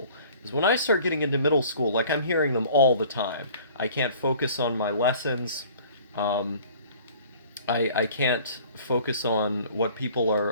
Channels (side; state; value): both; inverted; correlation -0.49